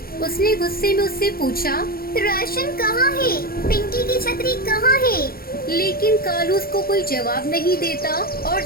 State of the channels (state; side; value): late; right; 0.44 ms